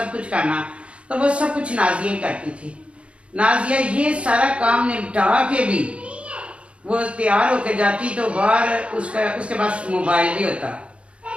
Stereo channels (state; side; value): late; left; 0.060 ms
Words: कुछ करना। तो वो सब कुछ नाजिया ही करती थी। नाजिया ये सारा काम निपटा के भी वो तैयार होकर जाती, तो बाहर उसके पास मोबाइल भी होता।